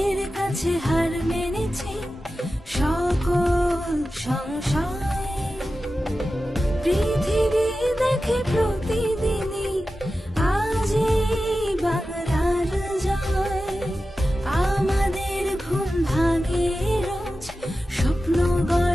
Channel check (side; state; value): both; normal; correlation 0.93